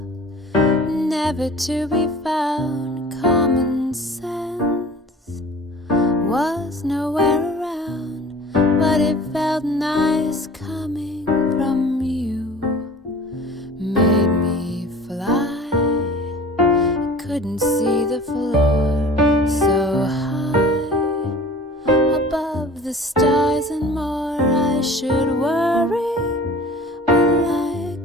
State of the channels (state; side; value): normal; both; correlation 0.43